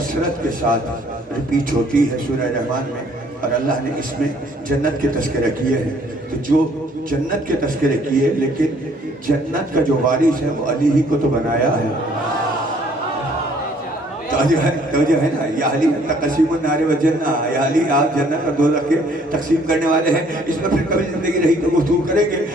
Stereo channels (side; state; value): both; normal; correlation 0.61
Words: کے ساتھ ریپیٹ ہوتی ہے سورہ رحمان میں، اور اللہ نے اس میں جنت کے تذکرہ کیے ہیں. تو جو جنت کے تذکرے کیے لیکن جنت کا جو وارث ہے وہ علی ہی کو تو بنایا ہے. توجہ ہے نا، یا علی تقسیم النار و جنہ، یا علی آپ جنت اور دوزخ کے تقسیم کرنے والے ہیں. اس میں پھر کبھی زندگی رہی تو گفتگو کریں گے.